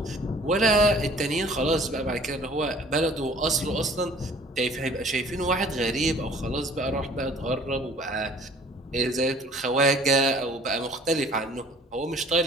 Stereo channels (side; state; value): both; normal; correlation 0.52